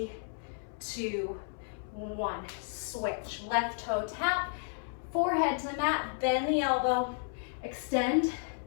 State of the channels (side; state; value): right; silent; 56 dB below the other